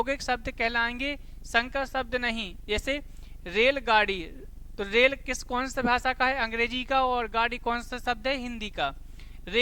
शब्द कहलाएंगे, संकर शब्द नहीं। जैसे रेलगाड़ी, तो रेल किस कौन सी भाषा का है? अंग्रेजी का। और गाड़ी कौन सा शब्द है? हिंदी का।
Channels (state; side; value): identical; both; correlation 1.00